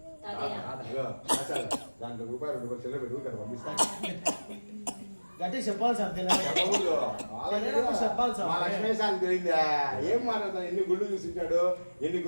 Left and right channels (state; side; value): inverted; both; correlation -1.00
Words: దాంట్లో రూపాయలు 2 చెల్లె పెట్టుకు ఇక్కడ పంపిస్తాను. గట్టి చెప్పాలి సార్, చెప్పాలి సార్. మా లక్ష్మీసారికి తెలియదా ఏం మాట్లాడతాను? ఎన్ని గుళ్ళు చూసింటాడు, ఎన్ని